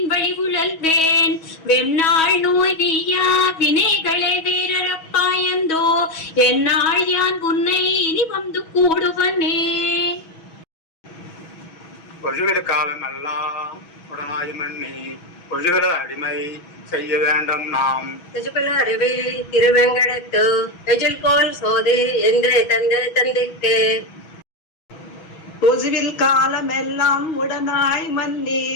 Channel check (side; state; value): right; late; 6.2 ms